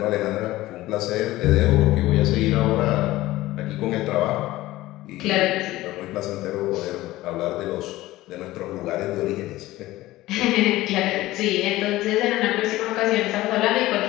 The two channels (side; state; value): right; quieter; 17.1 dB